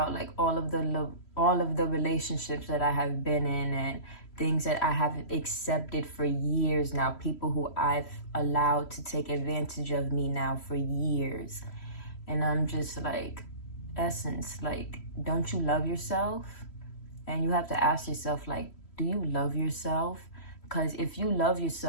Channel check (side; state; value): right; late; 3.0 ms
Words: like all of the relationships that I have been in, and things that I have accepted for years now, people who I've allowed to take advantage of me now for years. And I'm just like, Essence, like, don't you love yourself? And you have to ask yourself, like, do you love yourself? Because if you love